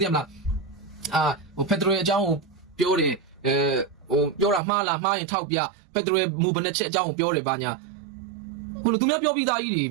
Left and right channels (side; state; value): left; drops out; at 4.6 s